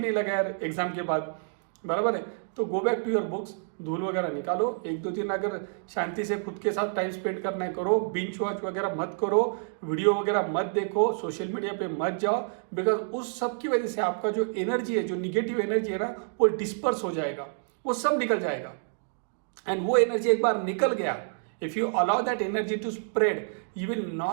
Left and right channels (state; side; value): silent; left; digital silence